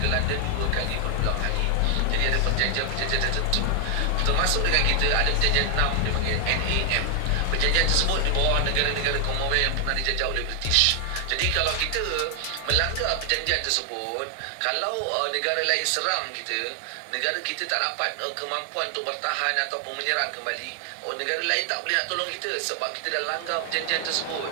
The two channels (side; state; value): both; different; correlation 0.00